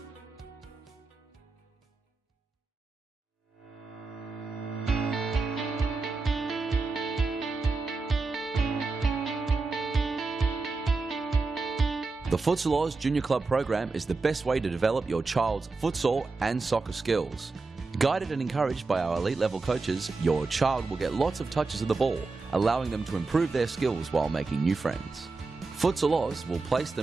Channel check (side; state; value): left; quieter; 3.9 dB